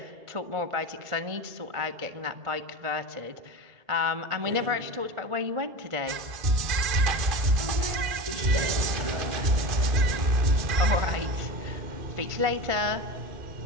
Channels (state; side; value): late; left; 1.5 ms